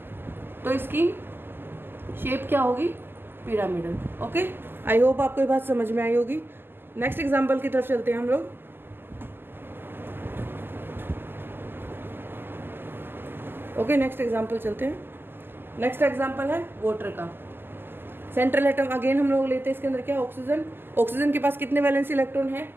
तो इसकी शेप क्या होगी? पिरामिडल। ओके, आई होप आपको ये बात समझ में आई होगी। नेक्स्ट एग्जाम्पल की तरफ चलते हैं हम लोग। ओके, नेक्स्ट एग्जाम्पल चलते हैं। नेक्स्ट एग्जाम्पल है वाटर का। सेंट्रल एटम अगेन हम लोग लेते हैं, इसके अंदर क्या? ऑक्सीजन। ऑक्सीजन के पास कितने वैलेंस इलेक्ट्रॉन है?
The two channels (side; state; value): left; late; 0.099 ms